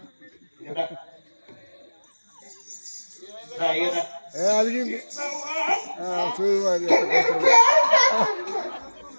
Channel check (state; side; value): inverted; both; correlation -1.00